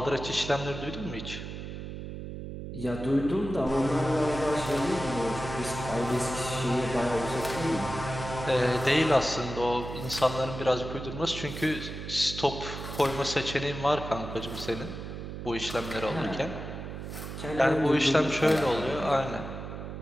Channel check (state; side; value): noise; right; hum, 8 dB below the sound